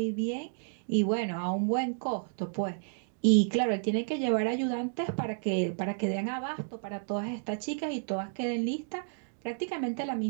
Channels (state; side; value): silent; left; digital silence